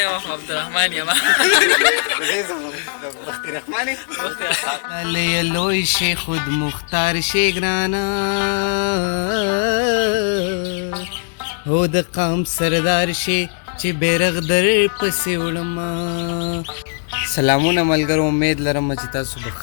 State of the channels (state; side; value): silent; right; digital silence